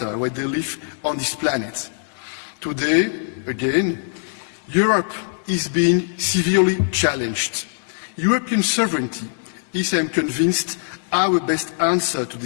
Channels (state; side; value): silent; right; digital silence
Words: where they live on this planet. Today, again, Europe is being severely challenged. European sovereignty is, I am convinced, our best answer to